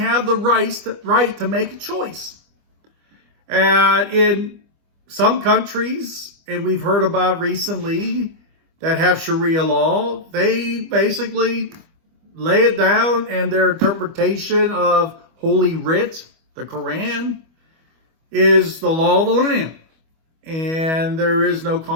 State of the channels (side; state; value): left; late; 25 ms